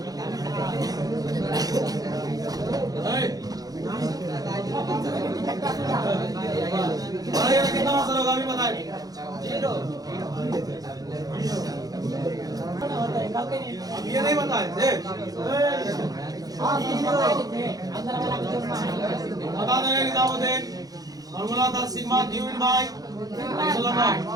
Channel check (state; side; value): late; left; 0.18 ms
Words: कितना असर होगा अभी बताए? 0 अब ये नहीं बताए थे, बता देंगे निजामुद्दीन। फॉर्मूला था sigma Q in by epsilon not.